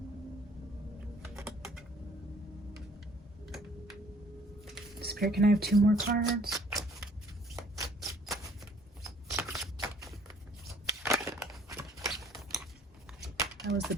Spirit, can I have 2 more cards? That was the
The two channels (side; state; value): both; normal; correlation 0.58